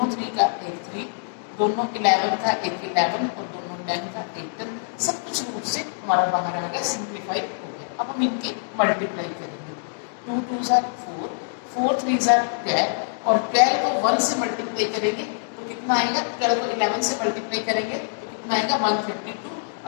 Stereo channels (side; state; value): right; silent; digital silence